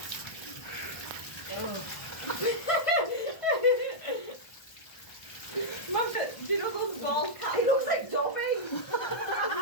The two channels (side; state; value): right; late; 1.2 ms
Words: Mum, do you know those bald cats? He looks like Dobby.